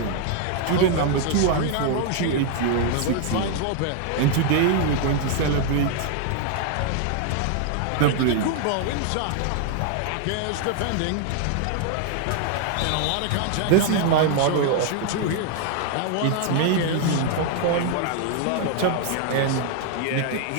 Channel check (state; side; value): different; both; correlation 0.00